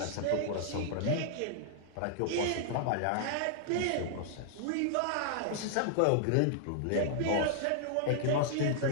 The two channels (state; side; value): different; both; correlation -0.01